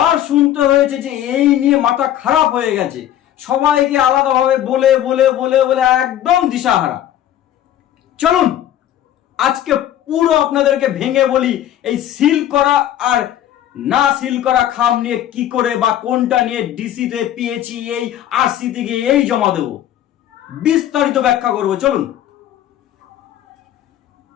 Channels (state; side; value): quieter; right; 11.7 dB